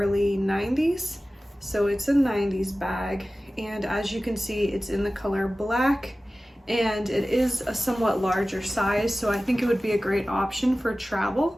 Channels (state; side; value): normal; both; correlation 0.96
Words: 90s. So it's a 90s bag, and as you can see, it's in the color black, and it is a somewhat larger size, so I think it would be a great option for travel.